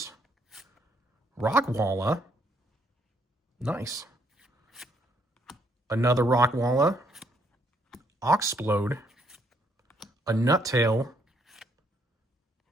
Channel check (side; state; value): both; normal; correlation 0.71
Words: Rockwalla. Nice. Another Rockwalla. Oxplode. A Nuttail.